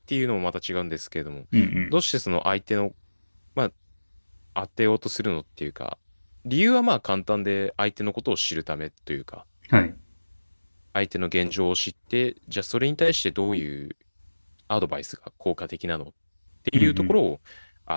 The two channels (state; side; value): inverted; both; correlation -1.00